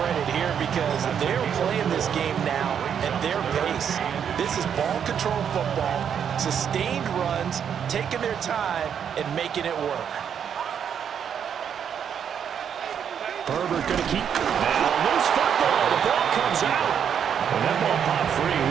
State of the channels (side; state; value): left; quieter; 8.1 dB